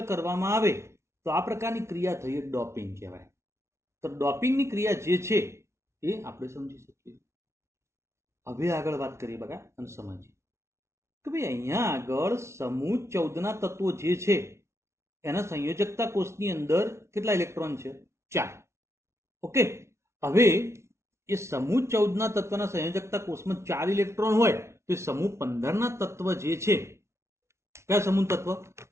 કરવામાં આવે તો આ પ્રકારની ક્રિયા થઈ ડોપિંગ કહેવાય. તો ડોપિંગની ક્રિયા જે છે એ આપણે સમજી શકીએ. હવે આગળ વાત કરીએ બગા અને સમજીએ કે ભાઈ અહીંયા આગળ સમૂહ 14ના તત્વો જે છે એના સંયોજકતા કોષની અંદર કેટલા ઇલેક્ટ્રોન છે? 4. ઓકે, હવે એ સમૂહ 14ના તત્વના સંયોજકતા કોષમાં 4 ઇલેક્ટ્રોન હોય તો એ સમૂહ 15ના તત્વ જે છે, કયા સમૂહ તત્વ?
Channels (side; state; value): left; late; 0.13 ms